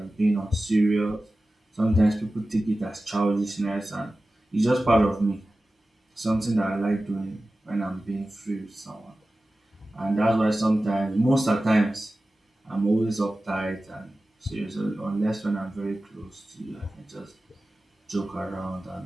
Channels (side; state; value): both; normal; correlation 0.95